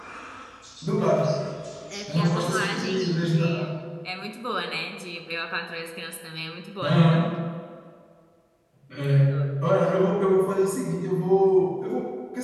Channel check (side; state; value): both; identical; correlation 1.00